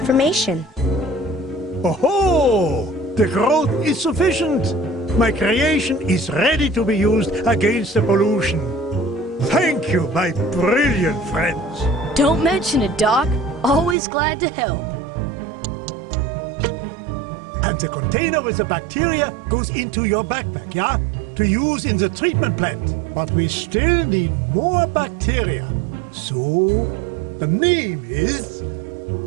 Oh, the growth is sufficient. My creation is ready to be used against the pollution. Thank you, my brilliant friends. Don't mention it, Doc. Always glad to help. And the container with the bacteria goes into your backpack, yeah? To use in the treatment plant. But we still need more bacteria. So, the name is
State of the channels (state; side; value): drops out; left; at 14.0 s